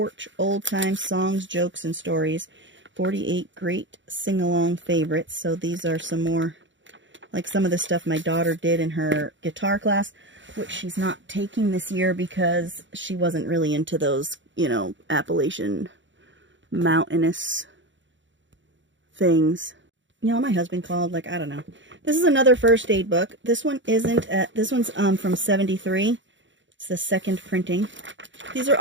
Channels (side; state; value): left; late; 0.54 ms